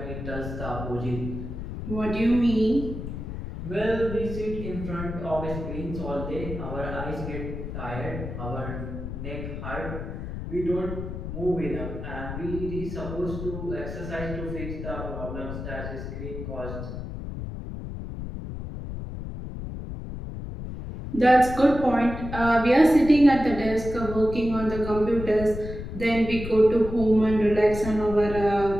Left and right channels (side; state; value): left; noise; rumble, 7 dB below the sound